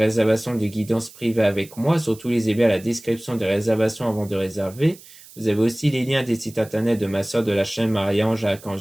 de guidance privée avec moi. Surtout, lisez bien la description des réservations avant de réserver. Vous avez aussi les liens des sites internet de ma soeur de la chaîne Marie-Ange à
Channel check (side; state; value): right; noise; hiss, 21 dB below the sound